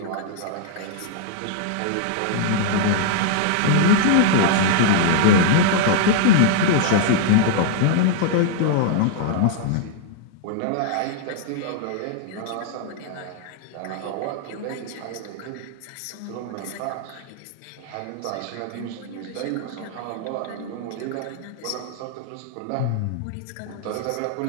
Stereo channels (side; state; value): both; different; correlation -0.01